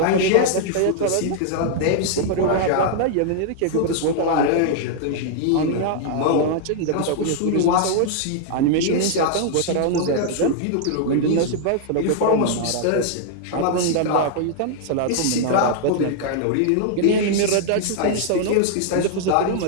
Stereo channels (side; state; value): both; different; correlation -0.01